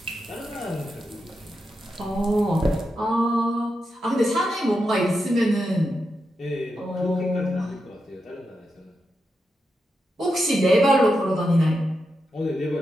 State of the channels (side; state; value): both; normal; correlation 0.87